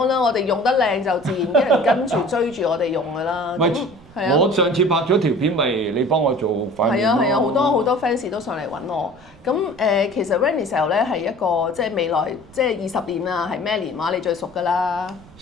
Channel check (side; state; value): right; noise; rumble, 24 dB below the sound